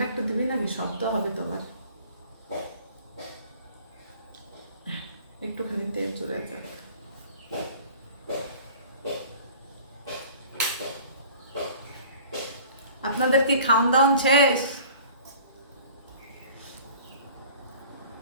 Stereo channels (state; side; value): inverted; both; correlation -0.47